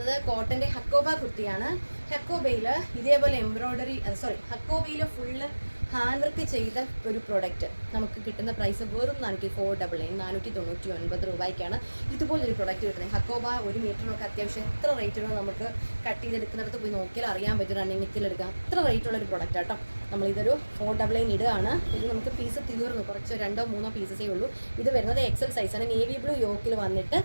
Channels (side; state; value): both; inverted; correlation -1.00